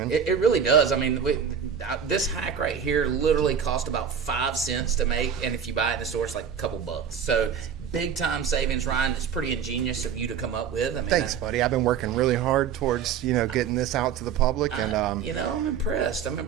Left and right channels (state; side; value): quieter; left; 7.5 dB